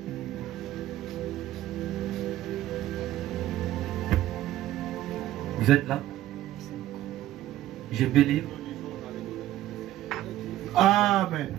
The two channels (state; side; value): quieter; left; 14.0 dB